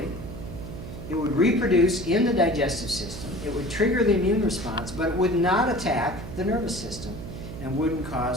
It would reproduce in the digestive system. It would trigger the immune response, but it would not attack the nervous system and wouldn't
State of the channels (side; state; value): right; noise; hum, 10 dB below the sound